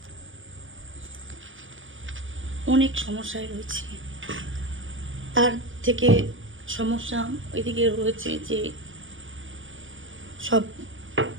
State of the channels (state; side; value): late; left; 0.58 ms